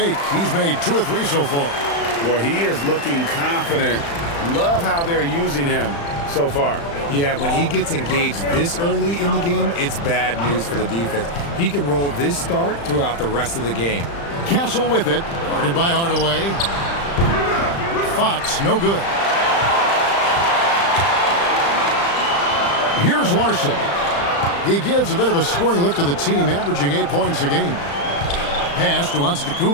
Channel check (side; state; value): right; late; 35 ms